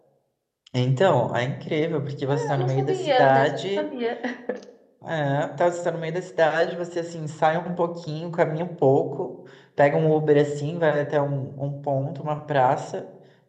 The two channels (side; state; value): both; identical; correlation 1.00